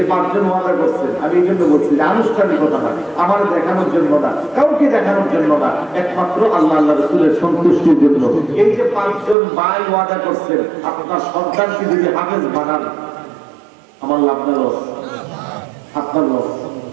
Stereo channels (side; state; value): left; drops out; at 9.3 s